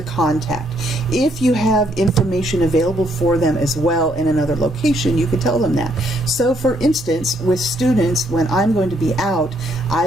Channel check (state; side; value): normal; both; correlation 0.71